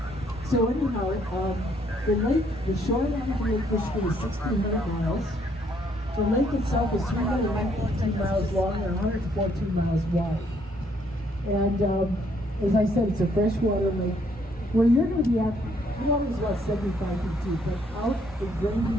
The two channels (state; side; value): normal; both; correlation 0.68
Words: So anyhow, the shoreline of Lake Michigan is 1,600 miles. The lake itself is 319 miles long and 114 miles wide. And as I said, it's a freshwater lake. Where you're going to be at, the water is about 75 feet deep, but out in